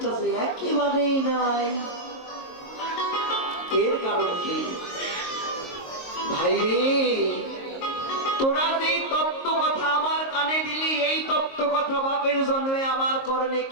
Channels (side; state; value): right; late; 22 ms